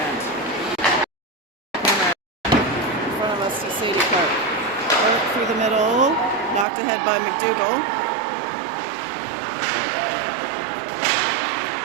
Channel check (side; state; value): left; drops out; at 6.7 s